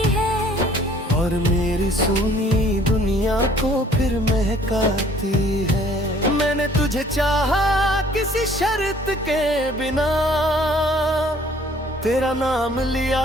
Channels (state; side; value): normal; both; correlation 0.57